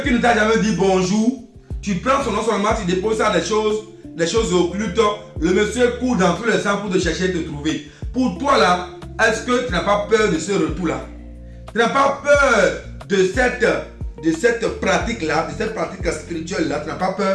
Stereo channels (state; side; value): identical; both; correlation 1.00